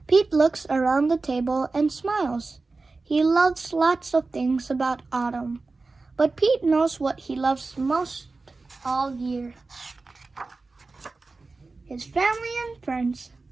Pete looks around the table and smiles. He loves lots of things about autumn, but Pete knows what he loves most all year. His family and friends.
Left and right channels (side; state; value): left; quieter; 3.7 dB